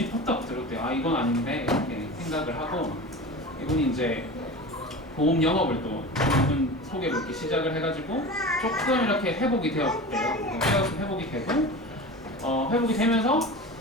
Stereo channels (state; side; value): normal; both; correlation 0.32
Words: 퍽떡 들었대요. 이건 아닌데 이렇게 생각을 하고 이분이 이제 보험 영업을 또 이분 소개로 이렇게 시작을 해가지고 조금 이렇게 회복이 되었대요. 회복이 되고 회복이 되면서